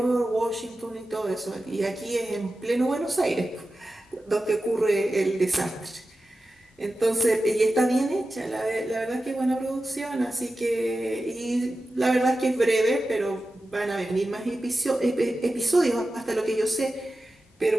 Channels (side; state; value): both; normal; correlation 0.93